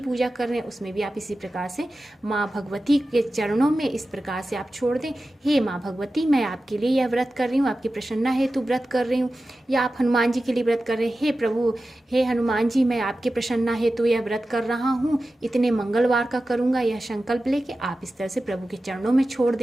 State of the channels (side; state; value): both; normal; correlation 0.94